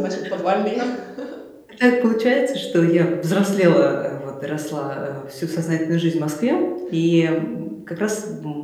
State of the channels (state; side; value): identical; both; correlation 1.00